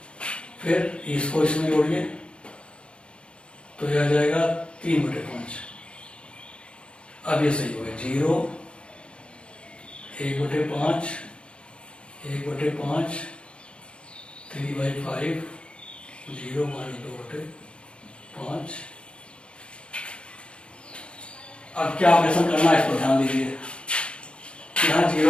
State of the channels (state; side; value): late; right; 0.056 ms